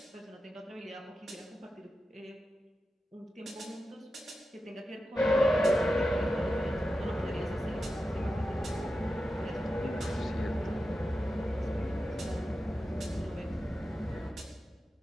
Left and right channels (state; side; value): normal; both; correlation 0.91